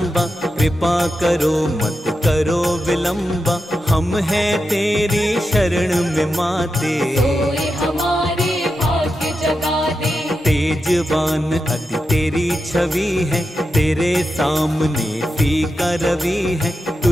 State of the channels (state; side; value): normal; both; correlation 0.88